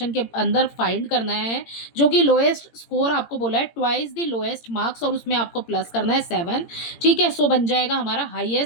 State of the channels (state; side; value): late; right; 17 ms